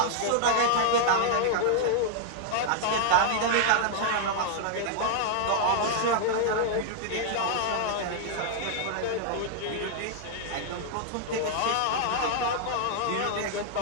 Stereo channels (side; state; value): both; different; correlation -0.01